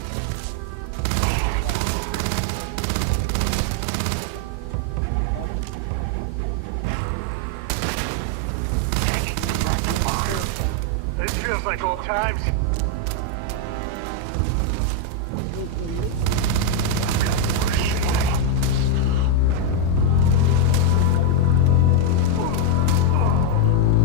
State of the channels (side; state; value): both; different; correlation 0.01